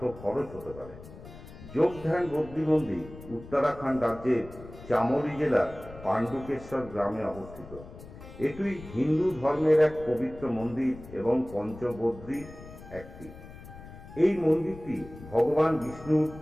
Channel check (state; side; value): noise; left; rumble, 16 dB below the sound